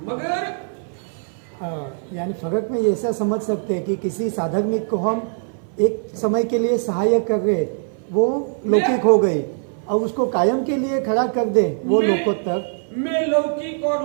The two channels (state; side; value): silent; left; 60 dB below the other